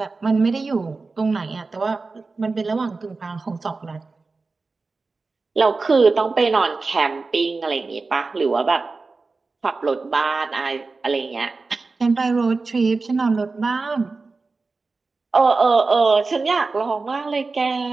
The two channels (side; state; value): left; quieter; 3.9 dB